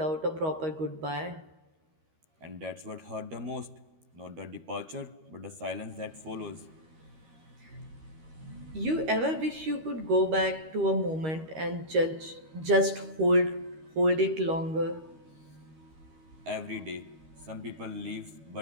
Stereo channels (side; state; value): left; late; 13 ms